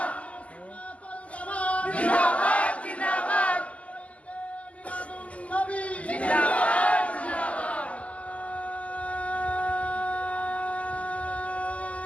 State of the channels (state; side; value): late; right; 0.067 ms